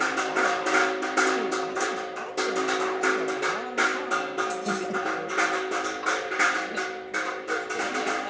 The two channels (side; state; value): both; identical; correlation 1.00